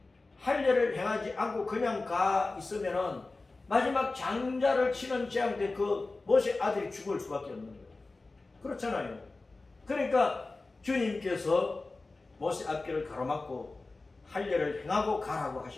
할례를 행하지 않고 그냥 가 있으면은 마지막 장자를 치는 재앙 때 그 모세 아들이 죽을 수밖에 없는 거예요. 그렇잖아요. 그러니까 주님께서 모세 앞길을 가로막고 할례를 행하고 가라고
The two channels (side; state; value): right; quieter; 3.4 dB